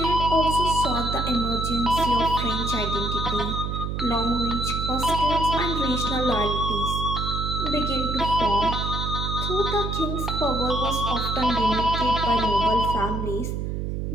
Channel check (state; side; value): noise; right; hum, 3 dB below the sound